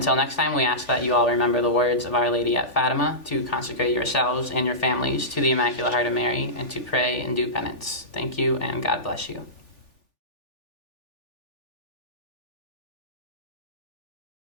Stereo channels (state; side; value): late; right; 3.4 ms